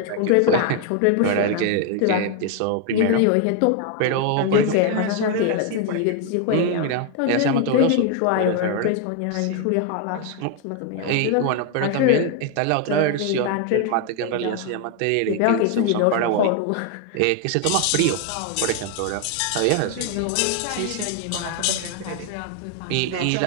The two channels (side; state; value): both; different; correlation 0.01